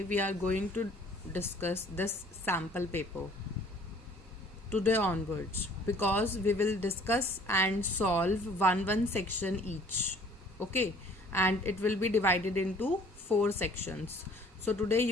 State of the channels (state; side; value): normal; both; correlation 0.54